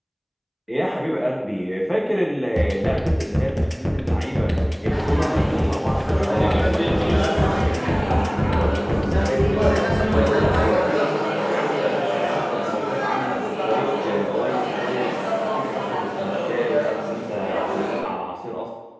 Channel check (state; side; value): identical; both; correlation 1.00